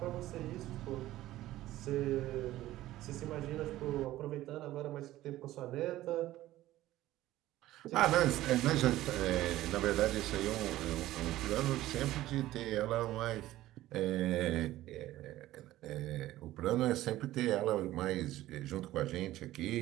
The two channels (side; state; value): left; quieter; 15.3 dB